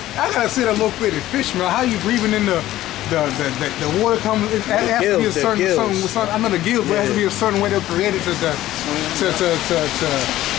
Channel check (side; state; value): right; quieter; 14.6 dB